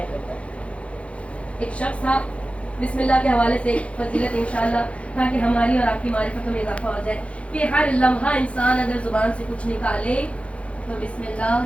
کرتا ہے. ایک شخص تھا، بسم اللہ کے حوالے سے فضیلت انشاءاللہ تاکہ ہماری اور آپ کی معرفت میں اضافہ ہو جائے کہ ہر لمحہ انسان اگر زبان سے کچھ نکالے تو بسم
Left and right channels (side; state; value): right; late; 0.062 ms